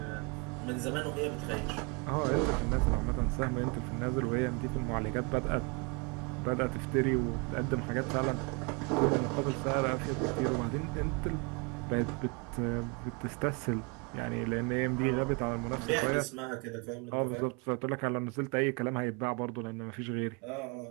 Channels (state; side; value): quieter; left; 31.8 dB